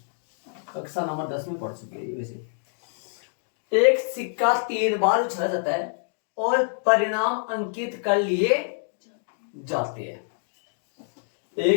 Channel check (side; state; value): right; silent; digital silence